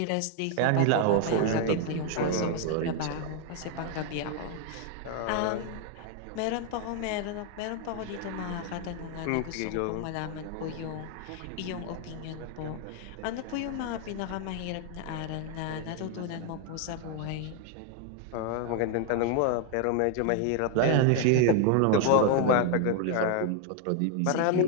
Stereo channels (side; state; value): both; different; correlation 0.00